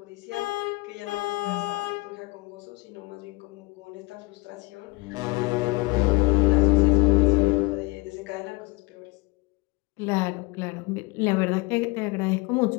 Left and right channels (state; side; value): quieter; right; 25.5 dB